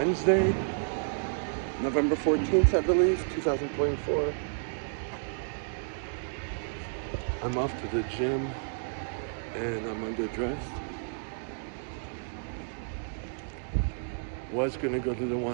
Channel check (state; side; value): silent; left; digital silence